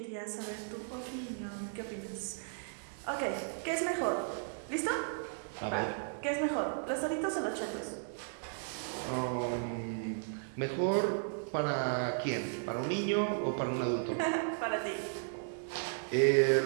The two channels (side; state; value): left; silent; digital silence